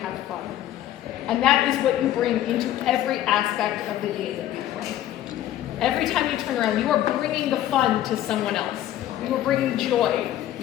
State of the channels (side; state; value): right; quieter; 12.6 dB